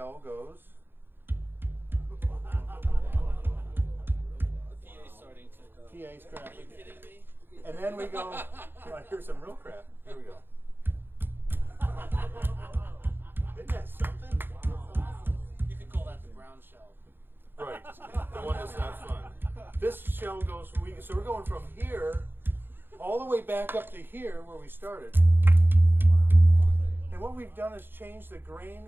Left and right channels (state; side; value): late; left; 0.098 ms